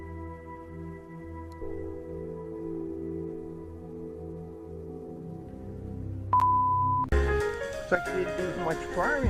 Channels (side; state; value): both; identical; correlation 1.00